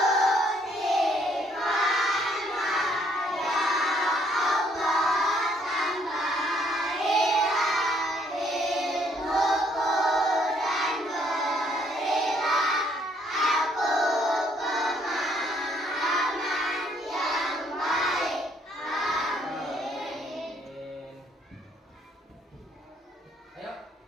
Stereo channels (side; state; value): both; normal; correlation 0.67